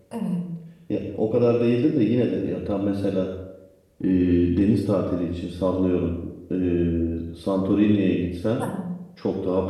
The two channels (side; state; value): both; identical; correlation 1.00